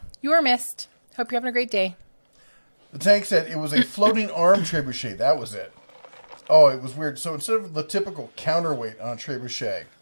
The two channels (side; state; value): both; inverted; correlation -1.00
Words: you were missed. Hope you're having a great day. The tank said it was a floating arm trebuchet. That was it. Oh, it was weird. So instead of the typical counterweight on a trebuchet,